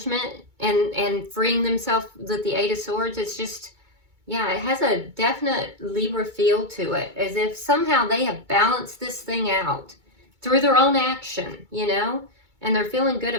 and freeing themselves with the Eight of Swords. It's just, yeah, it has a definite Libra feel to it. As if somehow they have balanced this thing out through their own action, you know? And they're feeling good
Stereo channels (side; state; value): left; late; 2.2 ms